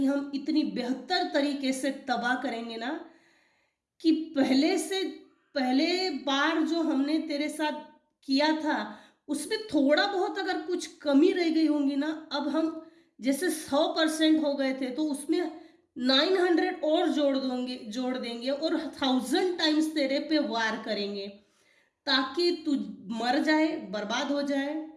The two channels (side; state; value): both; identical; correlation 1.00